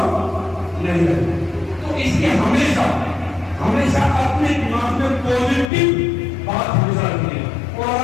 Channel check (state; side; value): drops out; right; at 5.7 s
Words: नहीं है। तो इसलिए हमेशा अपने दिमाग में पॉजिटिव बात हमेशा रखनी है, और